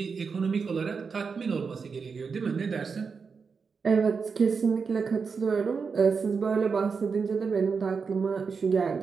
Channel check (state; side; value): quieter; left; 5.4 dB